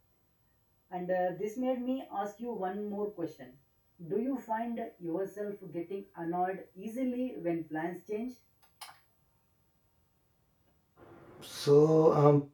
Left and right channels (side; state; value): both; identical; correlation 1.00